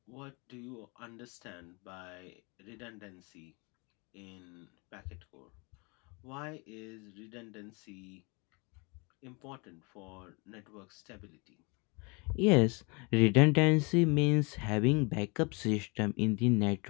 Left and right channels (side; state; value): right; quieter; 29.9 dB